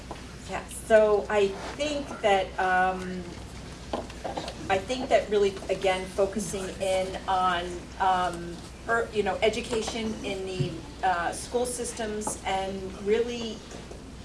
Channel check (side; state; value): both; identical; correlation 1.00